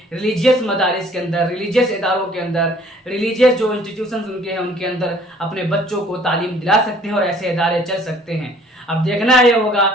रिलीजियस मदारिस के अंदर, रिलीजियस इदारों के अंदर, रिलीजियस जो इंस्टीट्यूशंस उनके हैं उनके अंदर अपने बच्चों को तालीम दिला सकते हैं और ऐसे इदारे चल सकते हैं। अब देखना यह होगा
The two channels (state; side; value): normal; both; correlation 0.56